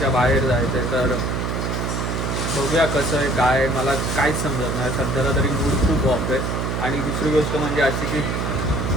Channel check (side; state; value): right; noise; hum, 1 dB below the sound